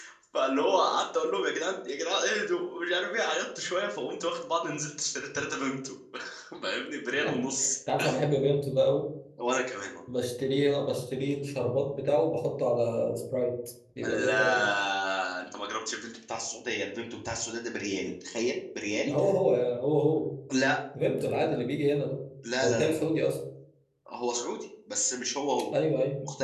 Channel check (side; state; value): both; identical; correlation 1.00